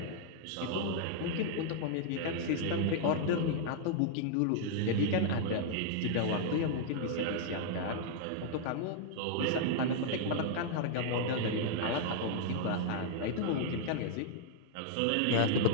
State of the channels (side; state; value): both; different; correlation -0.01